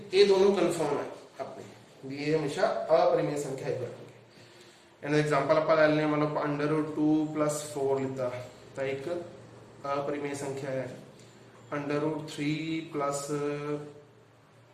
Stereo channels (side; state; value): both; identical; correlation 1.00